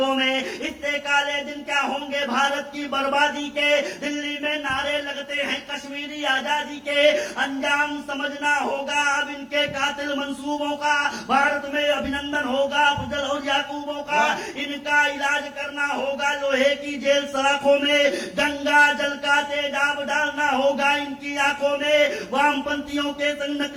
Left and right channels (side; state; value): both; identical; correlation 1.00